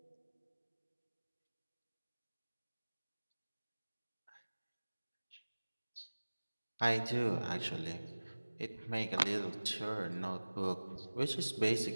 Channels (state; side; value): inverted; both; correlation -1.00